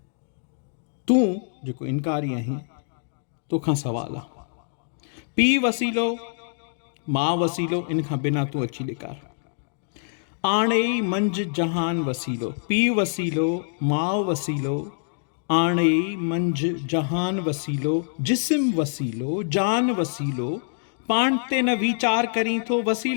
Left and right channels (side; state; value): right; silent; digital silence